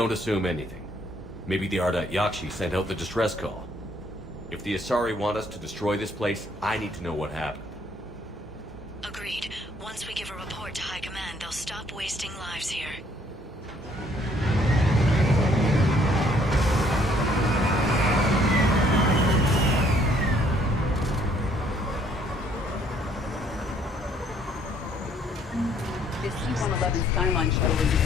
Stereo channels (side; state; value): both; normal; correlation 0.64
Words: assume anything. Maybe the Ardat Yakshi sent out the distress call. If the Asari want us to destroy this place, I need to know what happened. Agreed. Once we give a report to High Command, they'll stop wasting lives here. The C-111 Skyline shuttle is